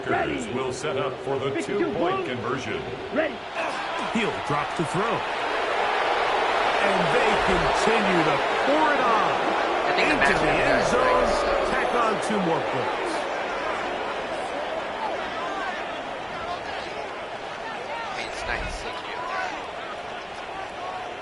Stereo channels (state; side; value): identical; both; correlation 1.00